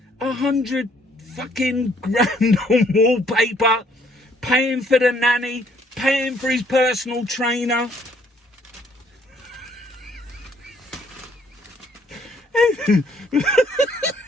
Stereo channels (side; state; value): both; normal; correlation 0.65